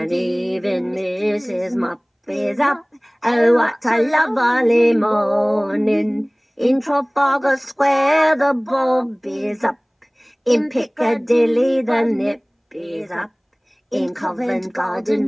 even Mrs. Mop is up. Oh, what a lovely morning. In Trafalgar Square the bulb is up, in Piccadilly the nip is up, in Covent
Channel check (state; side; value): identical; both; correlation 1.00